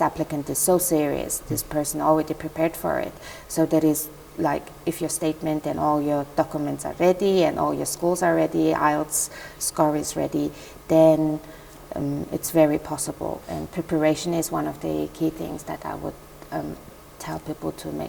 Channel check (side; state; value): both; identical; correlation 1.00